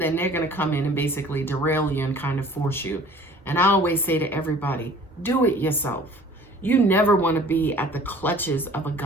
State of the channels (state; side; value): normal; both; correlation 0.49